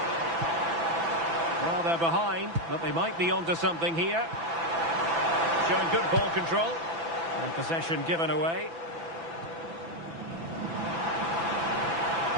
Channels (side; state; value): left; late; 6.0 ms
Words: Well, they're behind, but they might be onto something here. Showing good ball control. And possession given away.